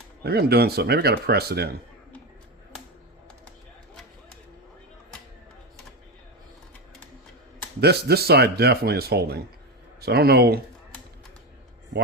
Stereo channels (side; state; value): both; normal; correlation 0.16